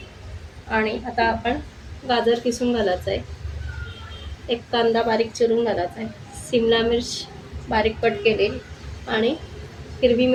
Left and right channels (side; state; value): both; identical; correlation 1.00